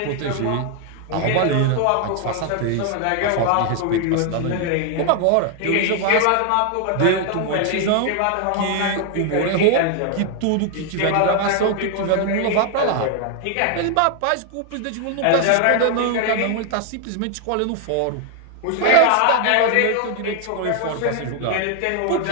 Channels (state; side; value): different; both; correlation 0.00